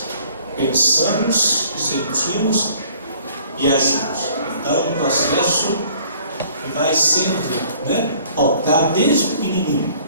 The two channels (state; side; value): inverted; both; correlation -0.56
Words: pensamos, sentimos e agimos. Então, é um processo que vai sendo, né, pautado desde pequenininho.